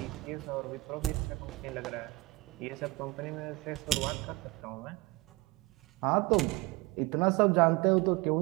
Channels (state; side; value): quieter; left; 21.4 dB